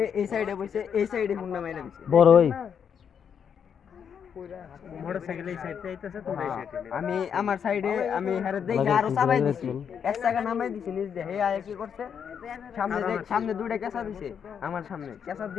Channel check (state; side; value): quieter; right; 7.6 dB